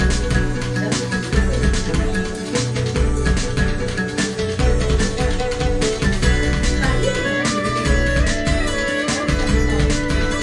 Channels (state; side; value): identical; both; correlation 1.00